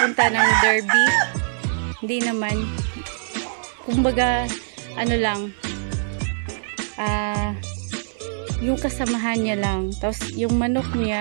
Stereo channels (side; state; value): left; silent; 57 dB below the other